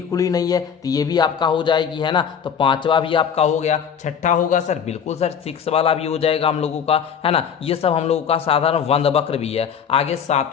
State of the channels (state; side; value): quieter; right; 7.6 dB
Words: खुली नहीं है, तो ये भी आपका हो जाएगी, है ना। तो पांचवा भी आपका हो गया। छठा होगा सर बिल्कुल सर 6 वाला भी हो जाएगा हम लोगों का, है ना। ये सब हम लोगों का साधारण वंद वक्र भी है। आगे